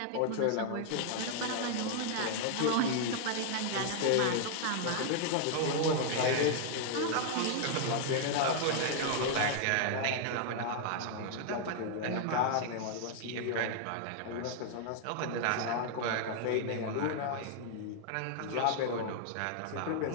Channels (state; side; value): different; both; correlation -0.01